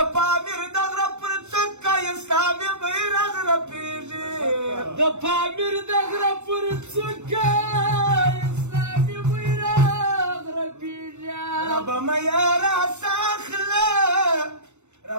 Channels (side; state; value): left; late; 0.83 ms